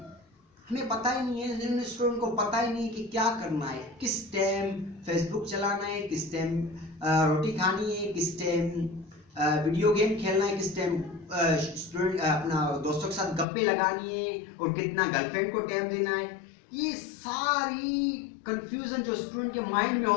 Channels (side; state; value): right; drops out; at 13.5 s